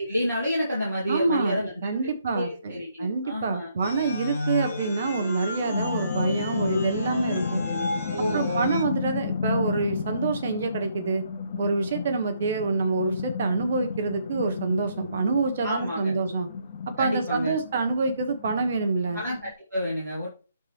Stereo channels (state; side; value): inverted; both; correlation -0.71